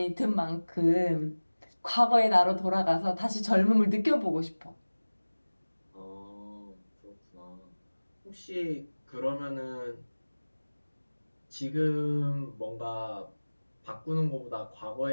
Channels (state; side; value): inverted; both; correlation -1.00